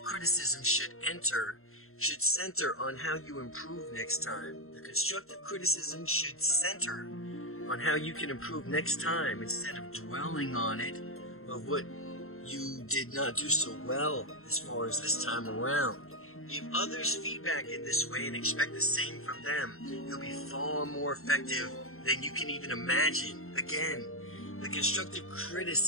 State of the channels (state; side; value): late; right; 0.62 ms